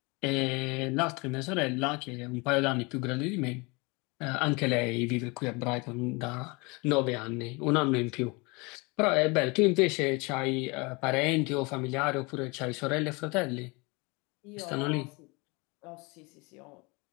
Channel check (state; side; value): quieter; right; 27.6 dB